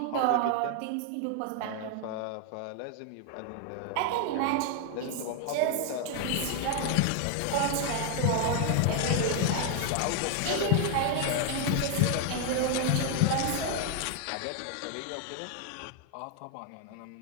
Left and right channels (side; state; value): both; different; correlation 0.00